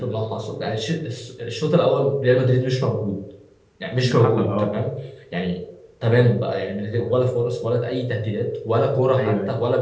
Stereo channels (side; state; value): both; identical; correlation 1.00